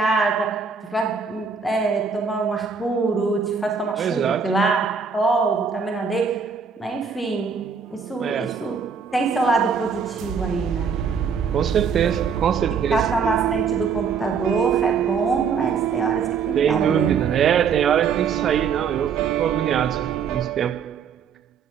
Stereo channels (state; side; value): quieter; left; 6.0 dB